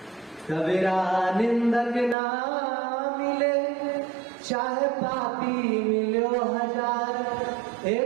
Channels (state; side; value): drops out; left; at 2.1 s